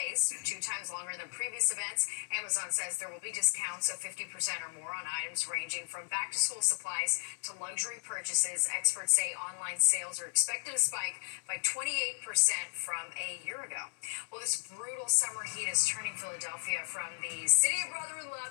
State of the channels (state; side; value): silent; right; digital silence